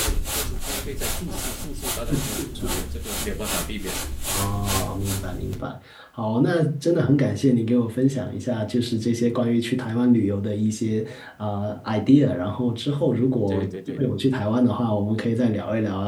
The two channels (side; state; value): both; identical; correlation 1.00